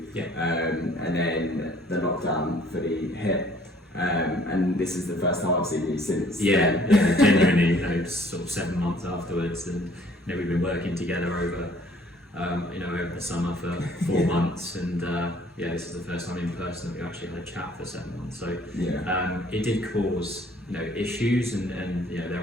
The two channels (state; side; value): normal; both; correlation 0.58